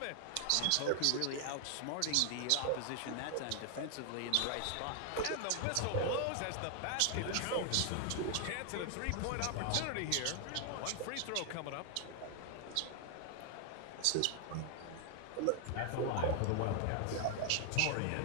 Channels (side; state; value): both; different; correlation 0.00